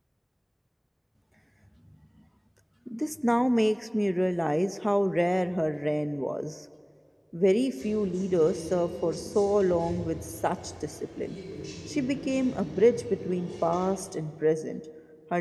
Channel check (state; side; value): identical; both; correlation 1.00